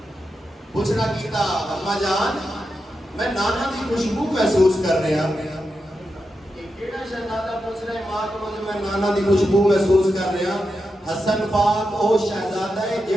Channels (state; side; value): normal; both; correlation 0.88